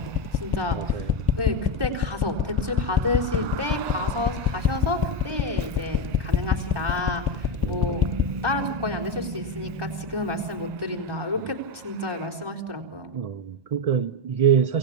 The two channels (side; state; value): left; late; 1.2 ms